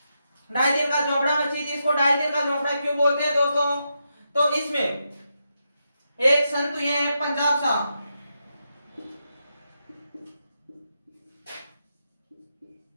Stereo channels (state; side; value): inverted; both; correlation -0.85